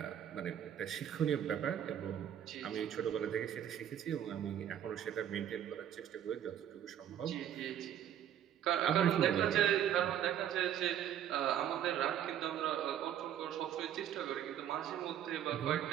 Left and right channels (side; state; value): left; quieter; 10.2 dB